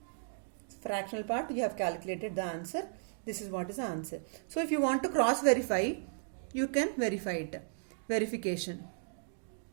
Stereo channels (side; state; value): left; silent; digital silence